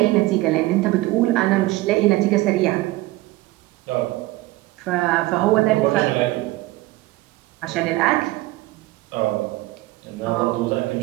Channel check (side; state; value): left; quieter; 18.8 dB